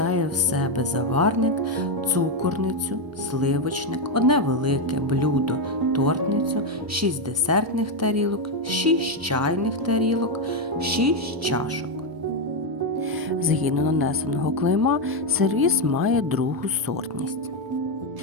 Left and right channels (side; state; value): left; late; 1.0 ms